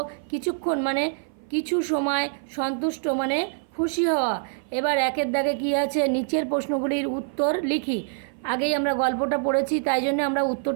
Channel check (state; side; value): silent; left; 56 dB below the other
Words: কিছুক্ষণ মানে কিছু সময়, সন্তুষ্ট মানে খুশি হওয়া। এবার একের দাগে কী আছে, নিচের প্রশ্নগুলির উত্তর লিখি। আগেই আমরা গল্পটা পড়েছি, তাই জন্য আমরা